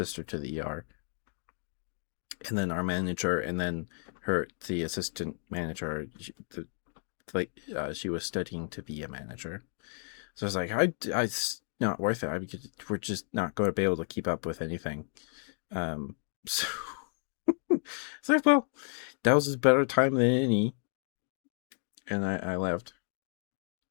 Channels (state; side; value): silent; right; 56 dB below the other